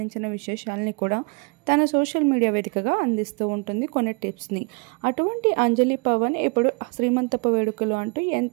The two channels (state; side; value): quieter; left; 31.7 dB